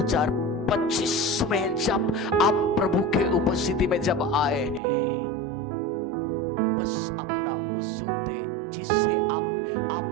में जब आप प्रभु के उपस्थिति में जब आए हैं, बस अपना उस जूते जिससे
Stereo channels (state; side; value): drops out; left; at 4.8 s